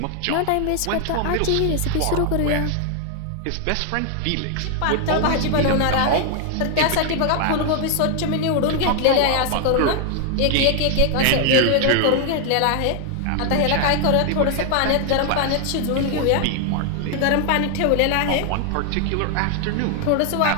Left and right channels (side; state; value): both; different; correlation 0.00